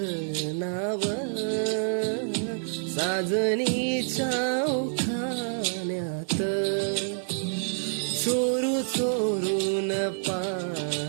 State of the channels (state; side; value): silent; left; 58 dB below the other